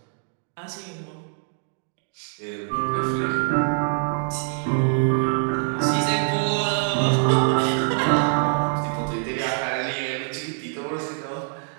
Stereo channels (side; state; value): left; silent; 62 dB below the other